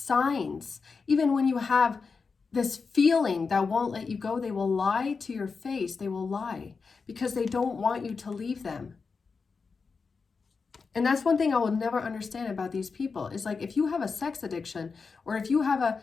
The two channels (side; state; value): right; quieter; 4.9 dB